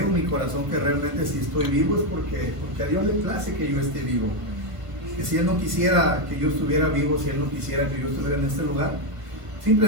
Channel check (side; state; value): left; late; 1.5 ms